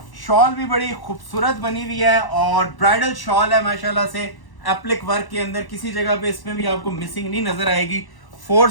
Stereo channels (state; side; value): late; right; 1.0 ms